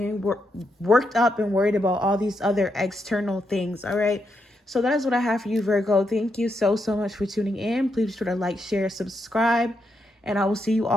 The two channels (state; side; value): normal; both; correlation 0.81